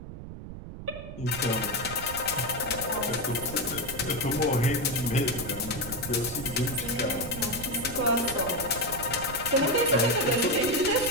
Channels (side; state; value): right; noise; rumble, 11 dB below the sound